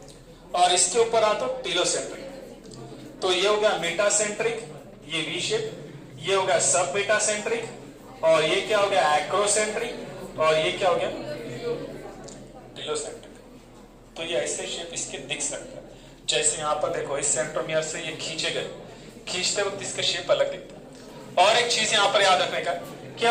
और इसके ऊपर आ तो टीलोसेंट्रिक। तो ये हो गया मेटासेंट्रिक, ये वी शेप, ये हो गया सब मेटासेंट्रिक, और ये क्या हो गया एक्रोसेंट्रिक, और ये क्या हो गया टीलोसेंट्रिक। तो ये ऐसे शेप इसके दिख सकता है। जैसे यहां पर देखो इस सेंट्रोमियर से ये खींचे गए, खींचते वक्त इसका शेप अलग दिखता है। और एक चीज यहां पर याद रखने का कि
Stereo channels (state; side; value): identical; both; correlation 1.00